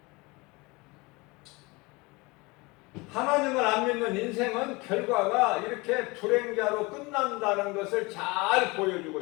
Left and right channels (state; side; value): quieter; right; 24.5 dB